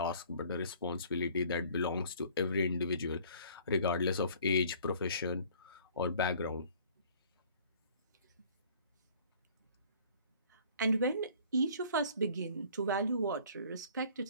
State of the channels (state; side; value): inverted; both; correlation -0.53